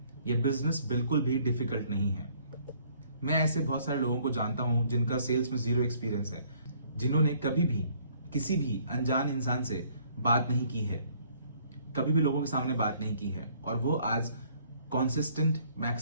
ये बिजनेस बिल्कुल भी डिफिकल्ट नहीं है। मैं ऐसे बहुत सारे लोगों को जानता हूं जिनका सेल्स में जीरो एक्सपीरियंस है, जिन्होंने कभी भी किसी भी अनजान इंसान से बात नहीं की है, कभी भी लोगों के सामने बात नहीं की है, और वो आज कॉन्सिस्टेंट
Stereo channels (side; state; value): both; inverted; correlation -0.62